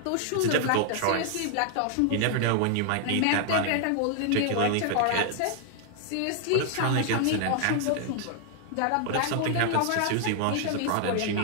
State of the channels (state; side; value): different; both; correlation 0.00